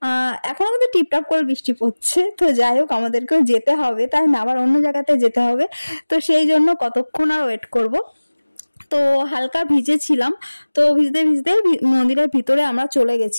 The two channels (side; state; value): both; inverted; correlation -1.00